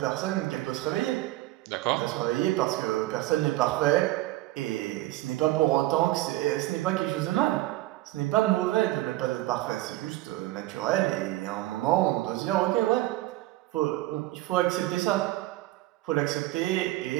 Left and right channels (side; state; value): left; quieter; 17.5 dB